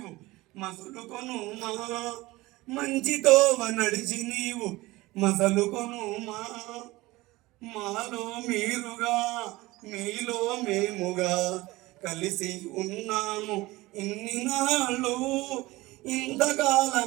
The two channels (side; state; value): left; quieter; 19.9 dB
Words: మసులుకొను మా, మంచితోవ నడిచి నీవు మసలుకొను మా. మాలో మీరుగా మీలో మేముగా కలిసి ఉన్నాము ఇన్ని నాళ్ళు.